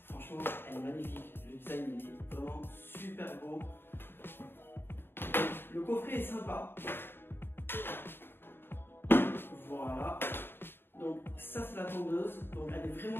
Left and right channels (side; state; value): right; late; 0.10 ms